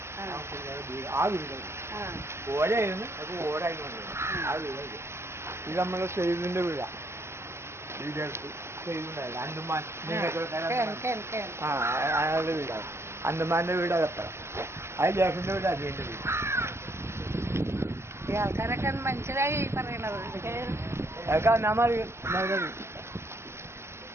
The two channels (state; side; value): late; left; 0.13 ms